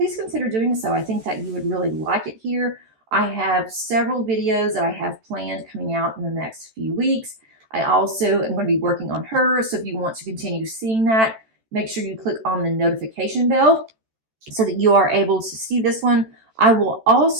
consider doing so. I think that you would really like it here. I have several videos that I have planned coming out in the next few weeks. I also am going to be working on her, so if you want to continue seeing that, make sure you click on the notification bell so that you are able to see this one. I will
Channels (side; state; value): left; late; 14 ms